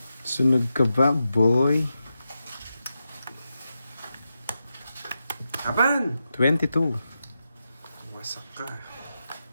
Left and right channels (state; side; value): inverted; both; correlation -0.89